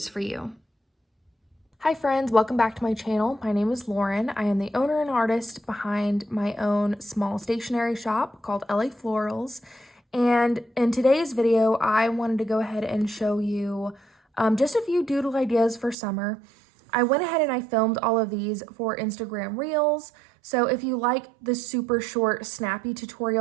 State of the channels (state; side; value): drops out; left; at 16.0 s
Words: for you. Hi friends, welcome back to my channel. My name is Lauren. I am the owner and artist behind my own small stationery shop called LA Florals. And in today's video, I wanted to go ahead and show you just a few doodle ideas for summer. I went ahead and I filmed all of these for Instagram Reels. So if you like the super short, snappy